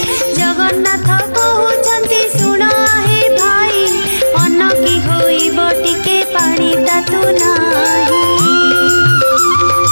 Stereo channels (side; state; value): both; inverted; correlation -1.00